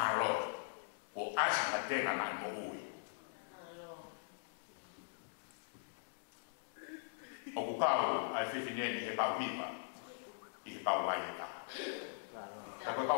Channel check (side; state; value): right; silent; digital silence